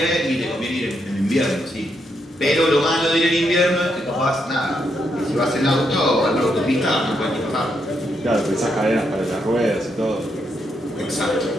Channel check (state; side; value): normal; both; correlation 0.79